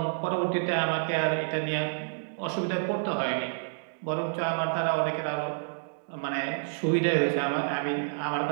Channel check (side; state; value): left; silent; digital silence